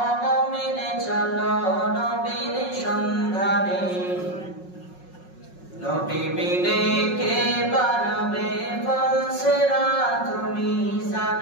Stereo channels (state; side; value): late; right; 5.5 ms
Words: মুমিনে চলো নবীর সন্ধানে নবী বিনে কে বাড়াবে ফলসেরা তুমি